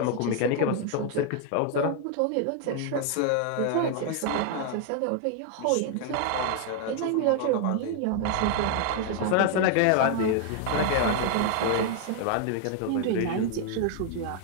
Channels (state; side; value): different; both; correlation 0.00